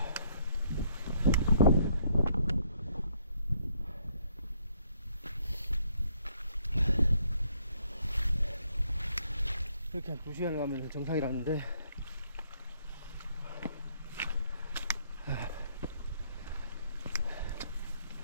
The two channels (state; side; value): inverted; both; correlation -0.69